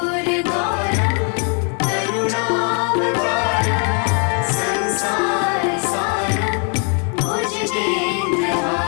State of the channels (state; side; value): quieter; right; 39.8 dB